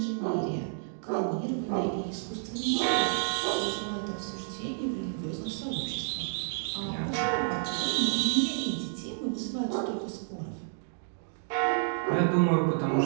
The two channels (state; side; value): silent; left; digital silence